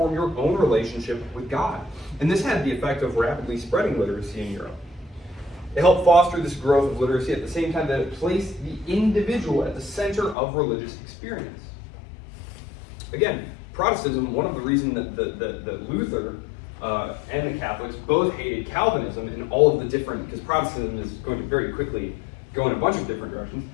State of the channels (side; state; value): right; drops out; at 10.4 s